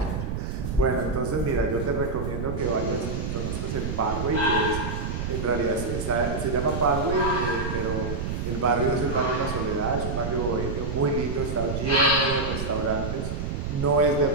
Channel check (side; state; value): right; noise; rumble, 3 dB below the sound